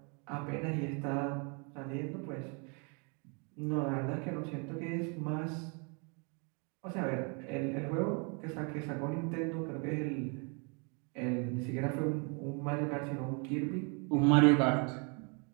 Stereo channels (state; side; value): quieter; left; 34.9 dB